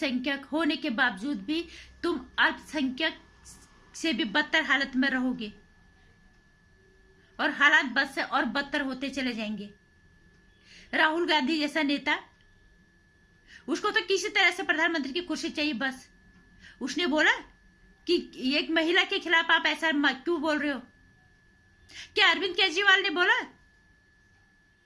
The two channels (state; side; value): identical; both; correlation 1.00